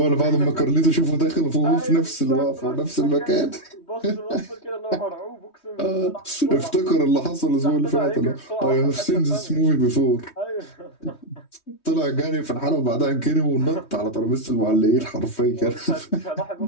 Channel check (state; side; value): late; right; 3.2 ms